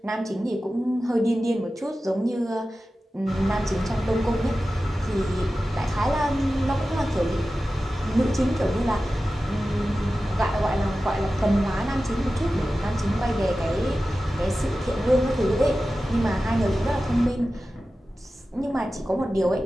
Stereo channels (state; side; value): normal; both; correlation 0.94